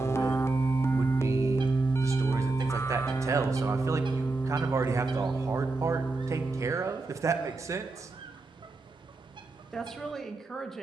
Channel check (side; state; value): left; quieter; 3.4 dB